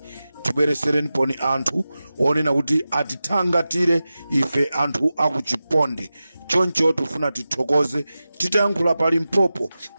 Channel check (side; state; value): both; inverted; correlation -0.94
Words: tibweresereni poni anthu onena kuti atithangatire ife anthu akuchiponde. Choncho tufuna tithokoze, titayankhula pali Mpopo